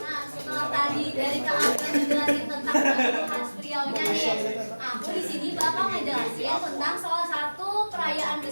setelah tadi dari Kak Abel ngejelasin tentang pacu khas Riau-nya nih, aku di sini bakal ngejelasin tentang salah satu perayaan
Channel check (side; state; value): both; inverted; correlation -1.00